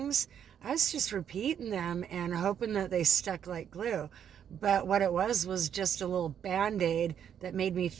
I was just repeating them and hoping that they stuck like glue. But what it was just a little Band-Aid that made me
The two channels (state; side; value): quieter; left; 8.9 dB